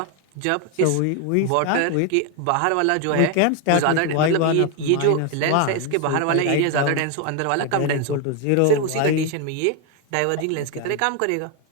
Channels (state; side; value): different; both; correlation 0.01